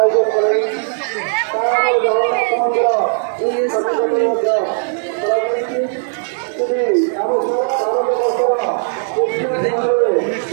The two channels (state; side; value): silent; left; digital silence